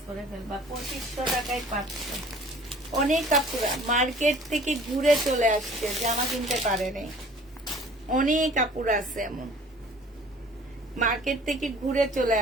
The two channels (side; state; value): both; normal; correlation 0.50